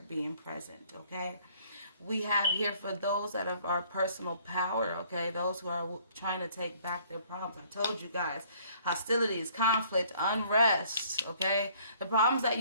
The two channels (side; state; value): both; inverted; correlation -0.59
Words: being present, okay? We have here for those that have our personal power, okay, those who are trying to take back their problems. I told you guys, hostilities, conflict, unrest, okay? The problems that